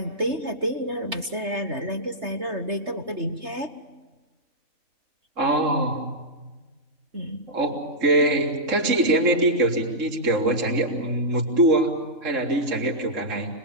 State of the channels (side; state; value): left; late; 3.3 ms